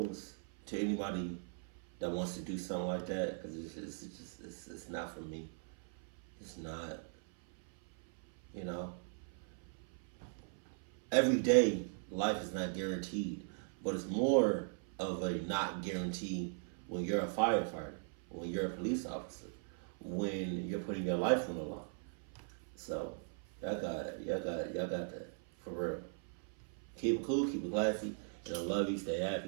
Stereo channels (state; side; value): silent; left; 52 dB below the other